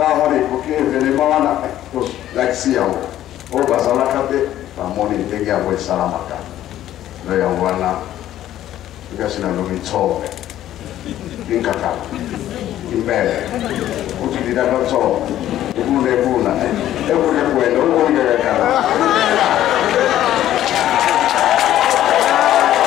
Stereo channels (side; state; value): right; quieter; 12.6 dB